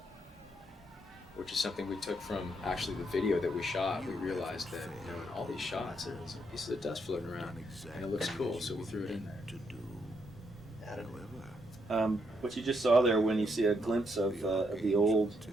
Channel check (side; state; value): both; normal; correlation 0.76